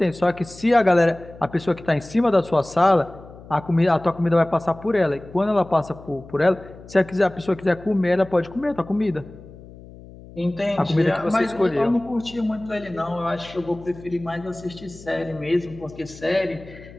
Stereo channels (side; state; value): left; noise; hum, 19 dB below the sound